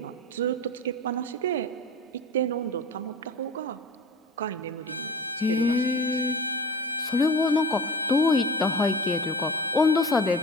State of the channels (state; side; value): normal; both; correlation 0.35